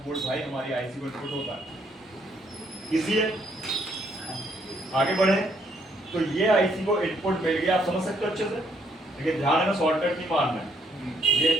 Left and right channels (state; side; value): normal; both; correlation 0.69